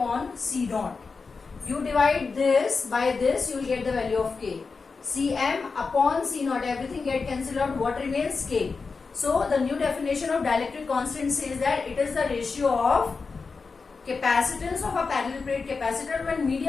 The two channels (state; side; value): quieter; right; 4.6 dB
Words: C naught. You divide this by this, you will get the value of K. Cm upon C naught, everything get cancelled out. What remains? K. So the new definition of dielectric constant says that it is the ratio of capacitance of a parallel plate capacitor when